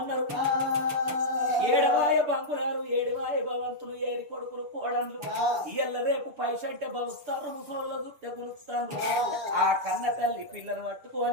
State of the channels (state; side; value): late; left; 6.9 ms